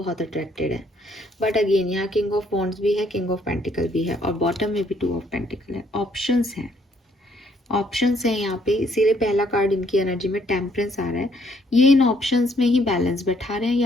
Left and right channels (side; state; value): both; normal; correlation 0.68